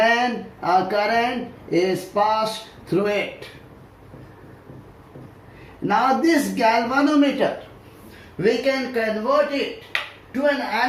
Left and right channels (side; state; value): both; identical; correlation 1.00